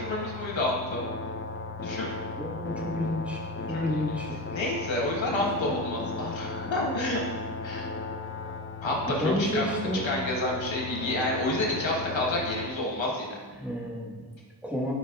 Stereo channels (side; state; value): both; normal; correlation 0.20